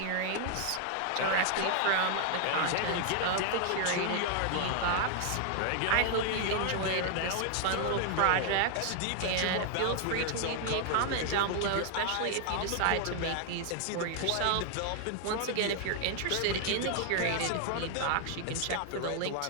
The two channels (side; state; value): both; different; correlation 0.00